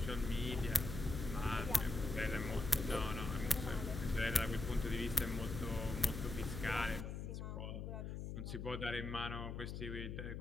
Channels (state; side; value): noise; left; hum, 5 dB below the sound